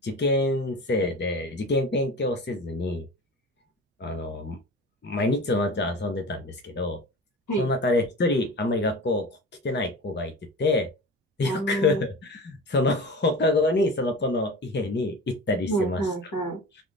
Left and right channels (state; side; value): normal; both; correlation 0.34